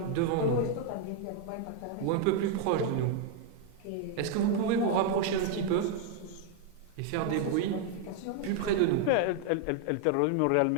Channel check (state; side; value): different; both; correlation 0.00